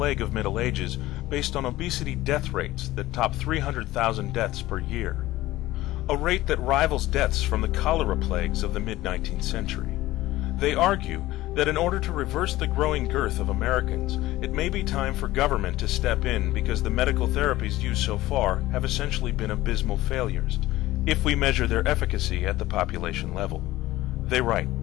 of Middle Ages based on obesity death rates that top 300,000 deaths per year, a rate that rivals deaths from the cholera plagues of the mid-19th century. They argue that in order to reverse the growing girth of Americans, it may be time for government to step in because the medical therapies used so far have essentially been abysmal failures, if we measure their efficacy at the population level. They write,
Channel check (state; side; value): quieter; right; 16.9 dB